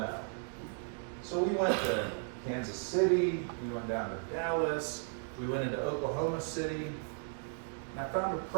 So we went to Kansas City, we went down to Dallas, we went into Oklahoma City, and I found a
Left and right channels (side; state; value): left; silent; 54 dB below the other